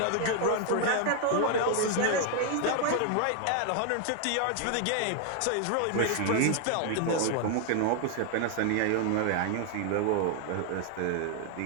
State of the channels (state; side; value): different; both; correlation 0.00